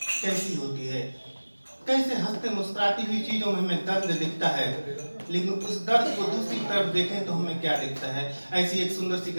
कैसी होती है, कैसे हंसते मुस्कुराती हुई चीजों में हमें दर्द दिखता है, लेकिन उस दर्द को दूसरी तरफ देखें तो हमें क्या दिखता है। ऐसी एक सुंदर सी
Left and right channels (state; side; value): inverted; both; correlation -1.00